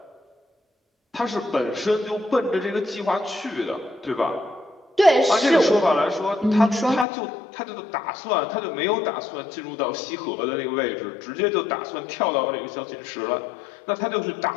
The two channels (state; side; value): drops out; right; at 7.1 s